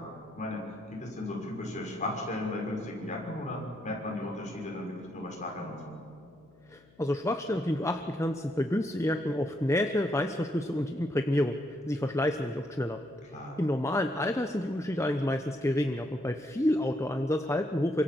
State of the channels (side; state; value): left; noise; hum, 28 dB below the sound